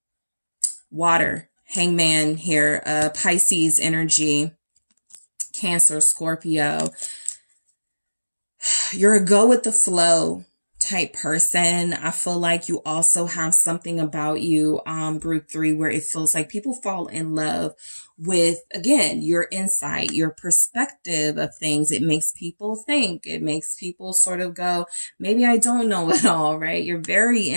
Water. Hangman here, Pisces energy, Cancer, Scorpio. You're a go with the flow type person. I feel like you also have something about you, group 3, where it feels like people fall in love with, again, your insight, your perspective of things. It makes people think. It makes people sort of go, maybe I don't know it all, right? You're very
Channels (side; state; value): both; inverted; correlation -1.00